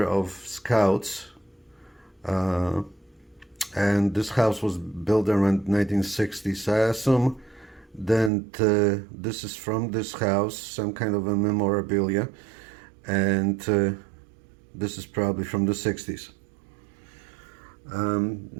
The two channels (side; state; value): left; drops out; at 8.3 s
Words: of Scouts, and this house was built around 1960s. I assume that this is from this house, some kind of a memorabilia, and this is probably from the 60s.